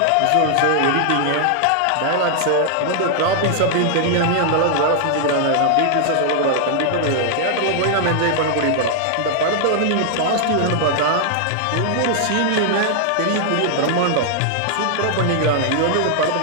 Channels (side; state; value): both; different; correlation -0.01